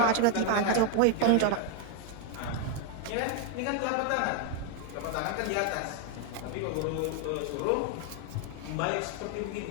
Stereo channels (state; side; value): different; both; correlation 0.01